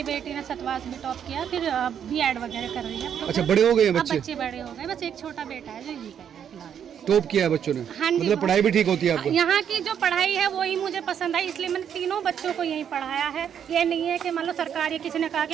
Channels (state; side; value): quieter; left; 8.6 dB